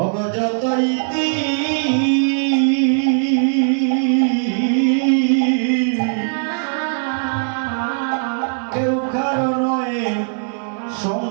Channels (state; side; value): silent; left; 67 dB below the other